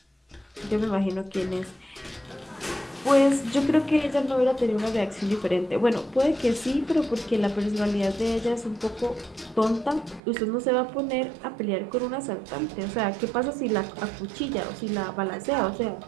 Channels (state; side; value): drops out; left; at 10.2 s